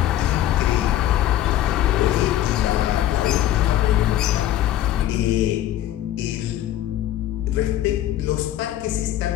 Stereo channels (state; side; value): quieter; right; 12.9 dB